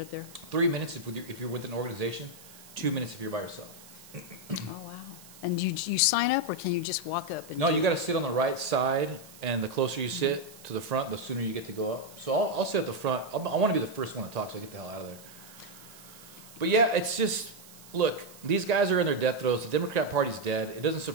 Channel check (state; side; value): noise; right; hiss, 20 dB below the sound